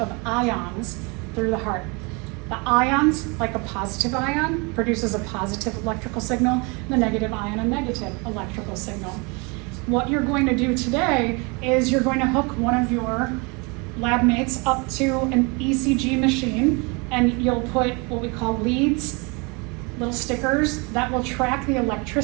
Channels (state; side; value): quieter; left; 29.8 dB